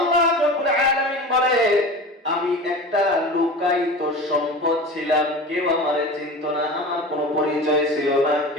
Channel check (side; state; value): both; normal; correlation 0.33